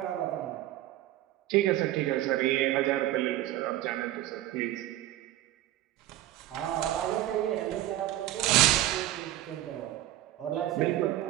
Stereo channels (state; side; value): quieter; left; 14.3 dB